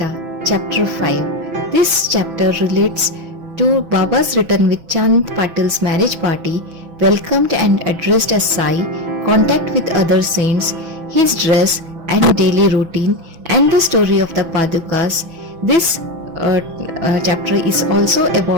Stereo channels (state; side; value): late; left; 6.0 ms